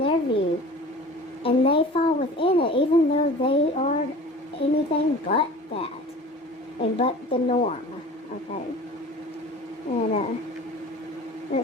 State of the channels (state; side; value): normal; both; correlation 0.41